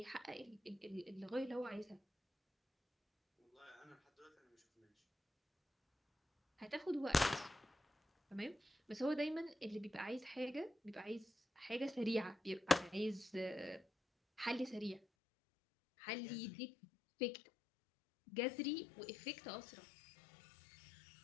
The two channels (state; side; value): drops out; right; at 15.0 s